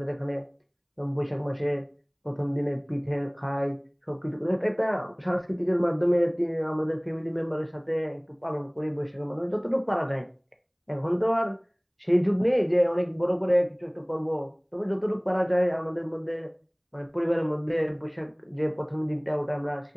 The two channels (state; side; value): identical; both; correlation 1.00